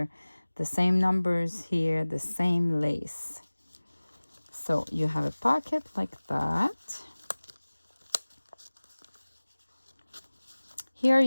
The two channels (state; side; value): inverted; both; correlation -1.00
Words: the same numbers here, the same lace. So you have a pocket like that. Here